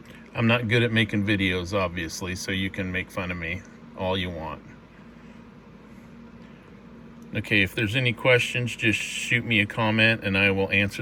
I'm not good at making videos, obviously, so you can make fun of me all you want. Okay, if there's any questions, just shoot me a comment and I will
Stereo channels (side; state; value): both; identical; correlation 1.00